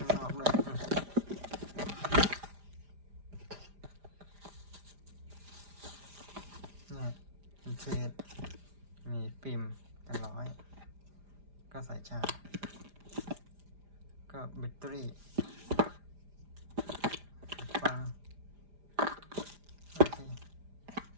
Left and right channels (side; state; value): left; late; 5.0 ms